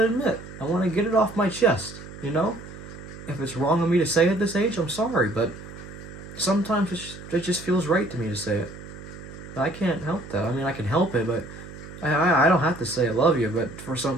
admit. I want to get it off my chest, If it's wrong of me to say it at this age, I'm sorry, but sometimes it just feels right to me to say it. I can't help that. I can help it, but I don't have to say I love you, but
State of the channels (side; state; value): right; noise; hum, 14 dB below the sound